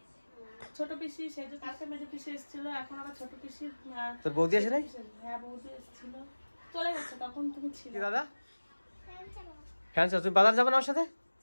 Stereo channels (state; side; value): inverted; both; correlation -1.00